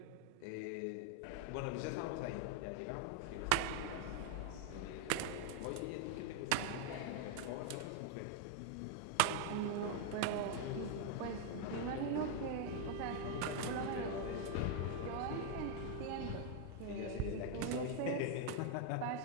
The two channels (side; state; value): both; different; correlation 0.00